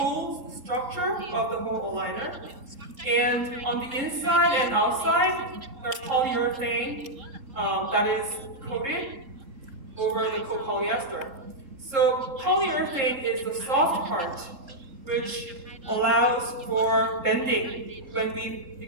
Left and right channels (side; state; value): left; late; 3.8 ms